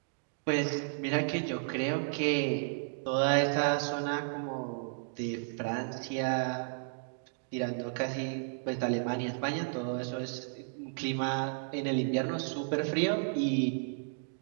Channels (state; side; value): silent; left; digital silence